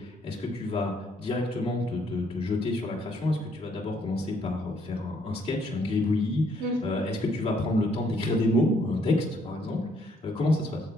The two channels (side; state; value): both; normal; correlation 0.69